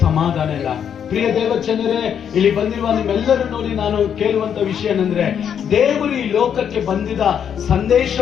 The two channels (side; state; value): right; quieter; 8.3 dB